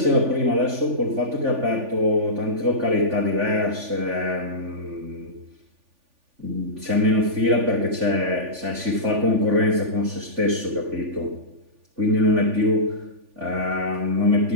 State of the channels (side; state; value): left; late; 3.5 ms